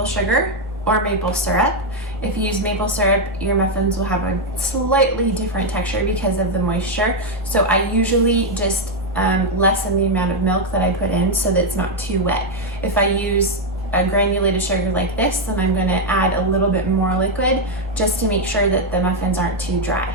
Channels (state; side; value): normal; both; correlation 0.02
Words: sugar or maple syrup. If you use maple syrup, your muffins will have a slightly different texture because of the moisture. So I usually just lessen the amount of milk that I put in so that it's not too wet. If I use a granulated sugar like this, then I'm going to add a little bit more liquid just to make sure that the muffins aren't too